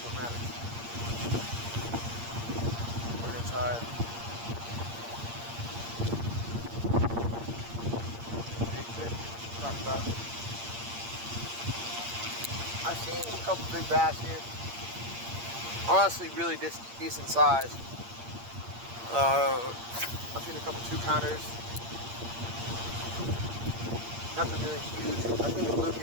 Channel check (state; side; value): late; left; 8.6 ms